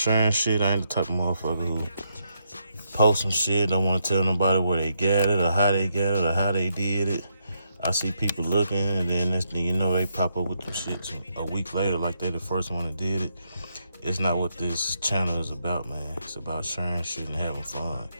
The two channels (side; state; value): both; inverted; correlation -0.79